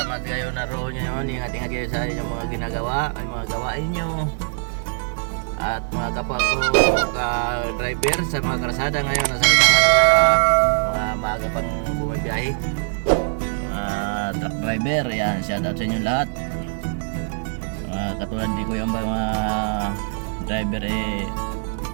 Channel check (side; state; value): left; silent; digital silence